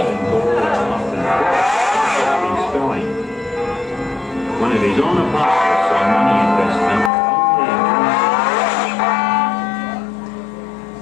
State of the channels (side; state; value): right; drops out; at 7.1 s